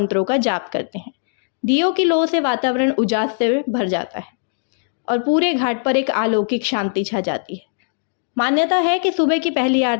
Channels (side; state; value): right; silent; digital silence